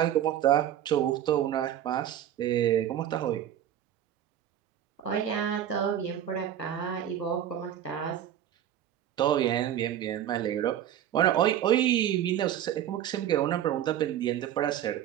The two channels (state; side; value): quieter; left; 10.8 dB